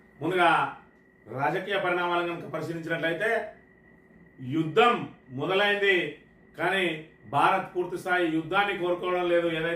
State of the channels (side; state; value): both; identical; correlation 1.00